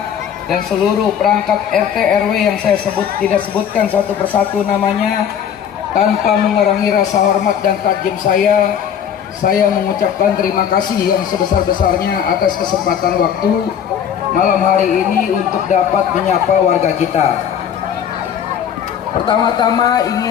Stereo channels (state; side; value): quieter; right; 8.6 dB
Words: dan seluruh perangkat RT RW yang saya tidak sebutkan satu persatu namanya, tanpa mengurangi rasa hormat dan takjub saya mengucapkan terima kasih yang sebesar-besarnya atas kesempatan waktu malam hari ini untuk dapat menyapa warga kita. Pertama-tama